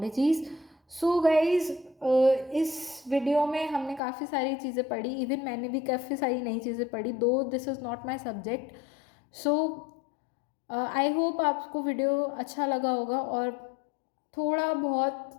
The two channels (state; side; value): drops out; right; at 4.0 s